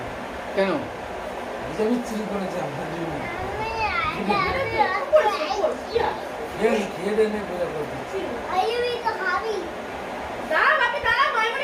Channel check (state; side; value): identical; both; correlation 1.00